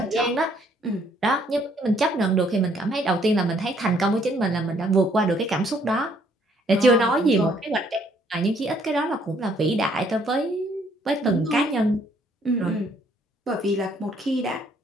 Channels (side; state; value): both; normal; correlation 0.65